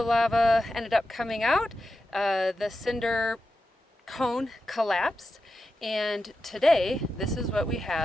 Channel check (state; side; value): normal; both; correlation 0.91